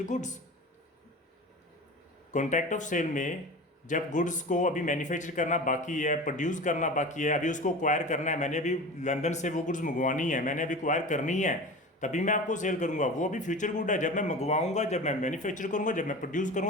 goods. Contract of sale में जब गुड्स को अभी मैन्युफैक्चर करना बाकी है, प्रोड्यूस करना बाकी है, अभी उसको एक्वायर करना है, मैंने अभी लंदन से वो गुड्स मंगवानी है, मैंने अभी एक्वायर करनी है, तभी मैं आपको सेल करूंगा, वो अभी फ्यूचर गुड है। जब मैं मंगवाऊंगा, जब मैं मैन्युफैक्चर करूंगा, जब मैं प्रोड्यूस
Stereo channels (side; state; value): both; normal; correlation 0.33